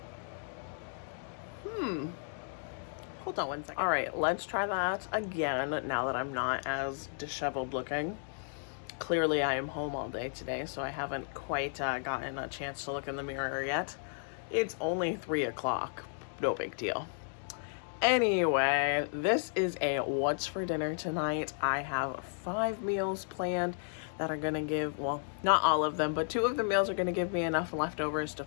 Hold on 1 second. All right, let's try that again now that I'm not as disheveled looking. Clearly I am home all day today, so I haven't quite gotten a chance to look in the mirror yet. It's only 3 o'clock, no big deal. Anyway, this is a what's for dinner tonight. I have 5 meals planned that are gonna give, well, not all of them, but 2 of the meals are gonna give me enough leftovers to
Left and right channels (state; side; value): silent; right; digital silence